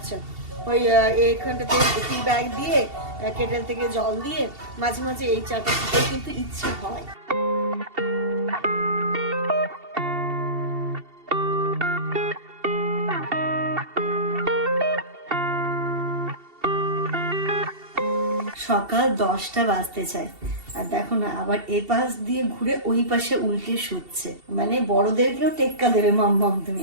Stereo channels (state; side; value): late; left; 2.7 ms